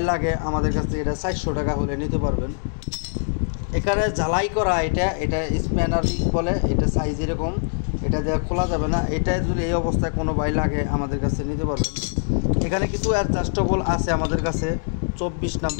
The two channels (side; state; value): right; silent; digital silence